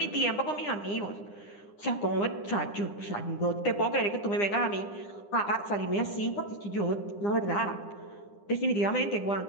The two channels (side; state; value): right; late; 9.9 ms